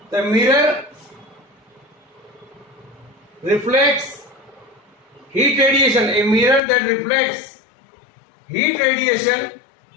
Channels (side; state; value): right; drops out; at 6.6 s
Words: The mirror reflects heat radiation, a mirror that reflects heat radiation.